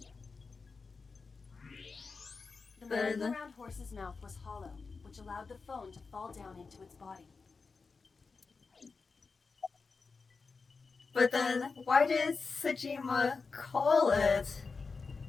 The merry-go-round horse's mouth was hollow, which allowed the phone to fall down into its body. But then, why did Sejima call it?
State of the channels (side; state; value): right; quieter; 4.6 dB